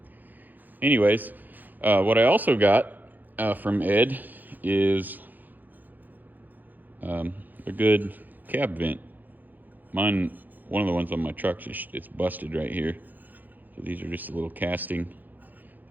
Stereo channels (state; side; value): late; left; 0.085 ms